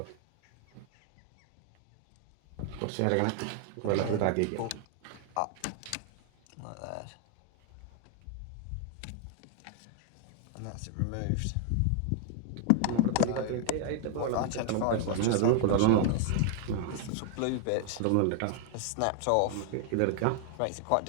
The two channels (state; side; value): different; both; correlation 0.00